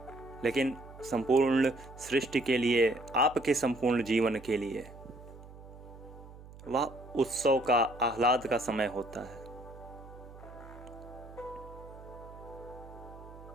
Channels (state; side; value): noise; right; hum, 17 dB below the sound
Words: लेकिन संपूर्ण सृष्टि के लिए, आपके संपूर्ण जीवन के लिए वह उत्सव का, आह्लाद का समय होता है।